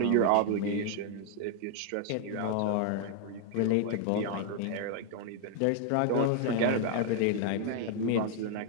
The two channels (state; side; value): different; both; correlation 0.00